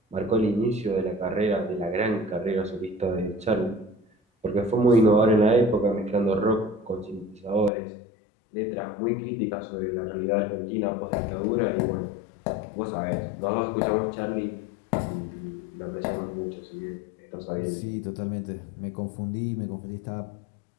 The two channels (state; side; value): drops out; right; at 7.7 s